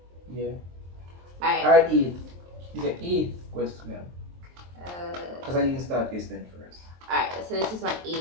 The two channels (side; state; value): left; late; 23 ms